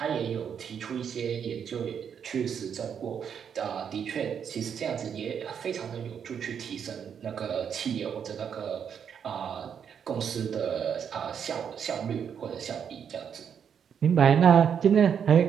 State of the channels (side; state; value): left; quieter; 7.7 dB